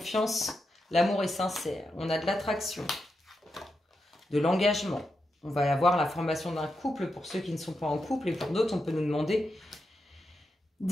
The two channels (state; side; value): normal; both; correlation 0.86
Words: l'amour est sincère. On a de l'attraction, de l'engagement. On va avoir la formation d'un couple pour ceux qui ne sont pas en couple et pour d'autres, on peut nous demander